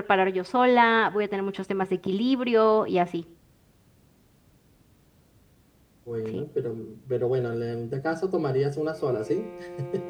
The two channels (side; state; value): both; identical; correlation 1.00